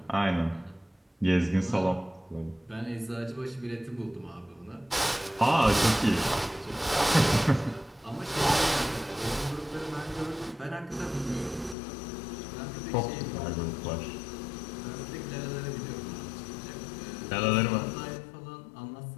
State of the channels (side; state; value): right; drops out; at 11.8 s